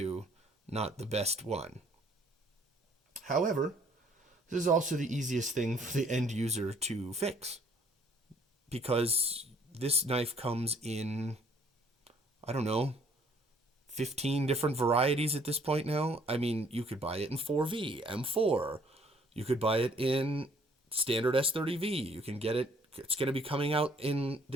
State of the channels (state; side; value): normal; both; correlation 0.61